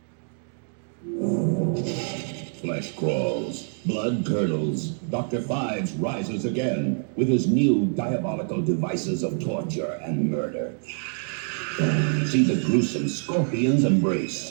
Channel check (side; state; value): left; silent; 55 dB below the other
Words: Flesh crawls, blood curdles. Dr. Fives rises again with his new diabolical devices of torture and murder. See the gruesome scorpion's